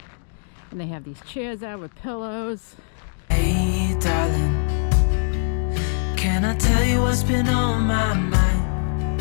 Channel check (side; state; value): right; silent; digital silence